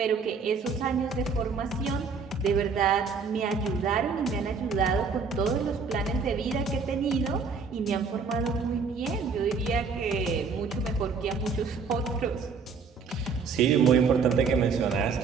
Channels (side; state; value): left; quieter; 5.1 dB